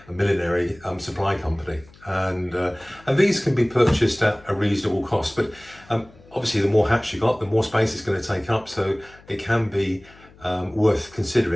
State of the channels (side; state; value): left; noise; hum, 25 dB below the sound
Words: millinery supply company, and these can be purchased at a reasonable cost, but obviously the more hats you got, the more space it's going to take up, so it can be worth